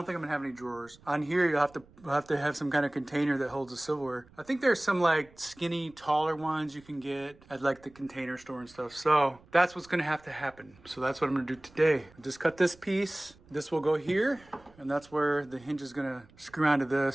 think I'm going to have any drawers. On here, you'll have to have some kind of container that holds the silverware. I think there's some like skinny, taller ones you can get at like the container store and stuff. So that's what's going to happen. So that's what I'm going to do today. Just cut this piece. This will go here, and that's where the hinge is going to screw onto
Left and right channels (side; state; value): right; noise; rumble, 27 dB below the sound